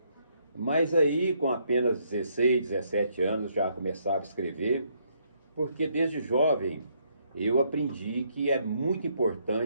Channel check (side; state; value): both; inverted; correlation -0.72